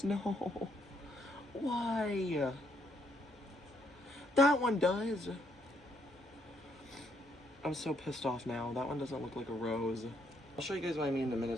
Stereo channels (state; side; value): normal; both; correlation 0.72